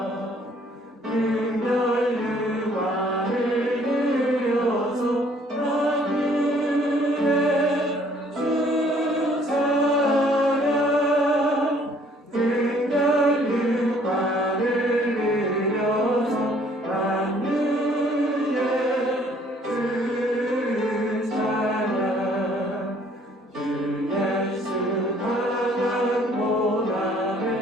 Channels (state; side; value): normal; both; correlation 0.60